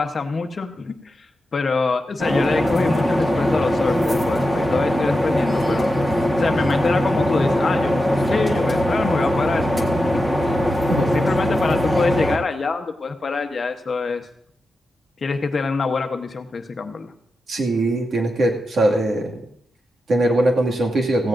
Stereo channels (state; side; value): normal; both; correlation 0.89